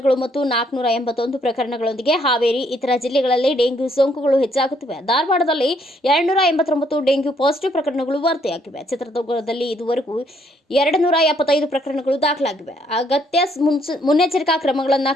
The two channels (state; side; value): normal; both; correlation 0.69